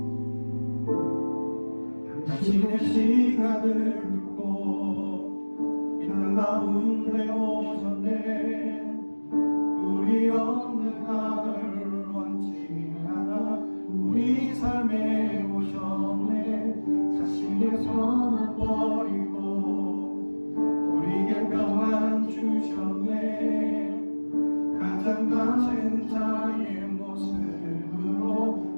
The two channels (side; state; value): both; inverted; correlation -1.00